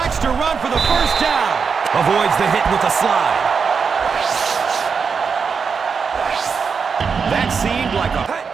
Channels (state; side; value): quieter; left; 5.7 dB